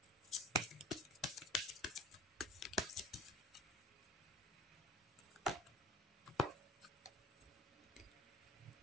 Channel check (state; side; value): normal; both; correlation 0.42